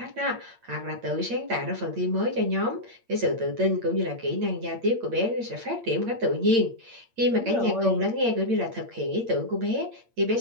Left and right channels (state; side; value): late; left; 8.7 ms